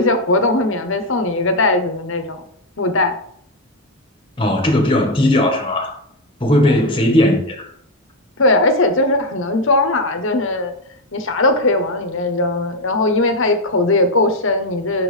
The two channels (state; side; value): normal; both; correlation 0.06